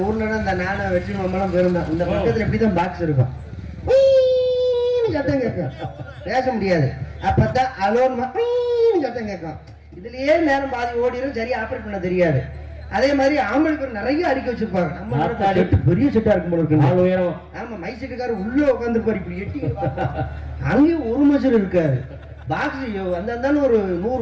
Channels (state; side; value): identical; both; correlation 1.00